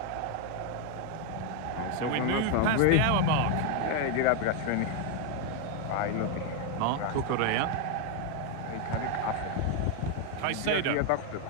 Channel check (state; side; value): different; both; correlation 0.01